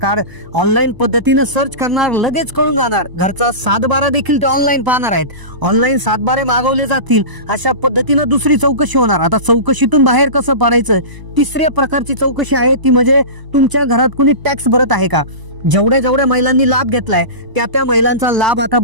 ऑनलाईन पद्धतीनं सर्च करणार, लगेच कळून जाणार. घरचा 7/12 देखील ते ऑनलाईन पाहणार आहेत. ऑनलाईन 7/12 मागवले जातील. अशा पद्धतीनं दुसरी चौकशी होणार. आता चौकशीतून बाहेर कसं पडायचं, तिसऱ्या प्रकारची चौकशी आहे ती म्हणजे तुमच्या घरात कोणी टॅक्स भरत आहे का. जेवढ्या महिलांनी लाभ घेतलाय त्या महिलांचा लाभ आता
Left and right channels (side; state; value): left; late; 1.0 ms